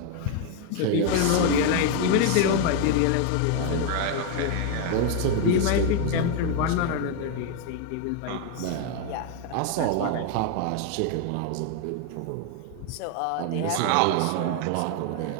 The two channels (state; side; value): different; both; correlation 0.01